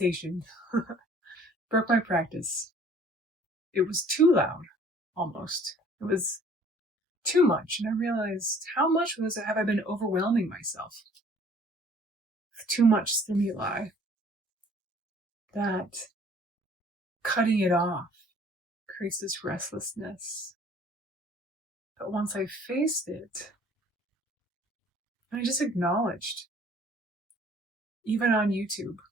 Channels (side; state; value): both; normal; correlation 0.55